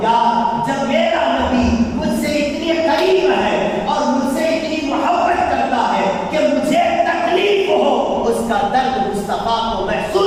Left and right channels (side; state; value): both; identical; correlation 1.00